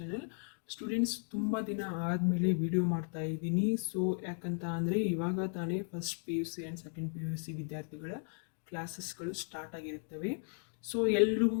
Students, ತುಂಬ ದಿನ ಆದಮೇಲೆ ವಿಡಿಯೋ ಮಾಡ್ತಾ ಇದ್ದೀನಿ. ಸೊ ಯಾಕಂತ ಅಂದರೆ ಇವಾಗ ತಾನೇ first P U C and second P U C ವಿದ್ಯಾರ್ಥಿಗಳ ಕ್ಲಾಸಸ್ಗಳು ಸ್ಟಾರ್ಟ್ ಆಗಿರುತ್ತವೆ. ಸೊ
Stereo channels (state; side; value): silent; right; 54 dB below the other